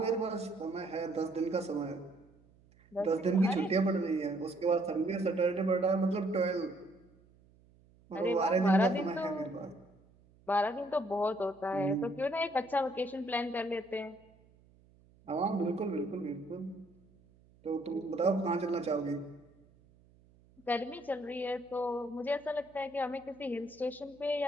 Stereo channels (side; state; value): right; noise; hum, 29 dB below the sound